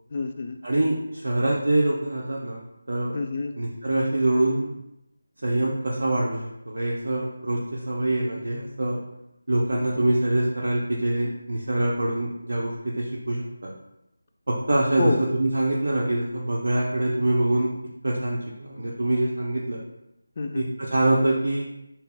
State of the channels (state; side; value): inverted; both; correlation -0.95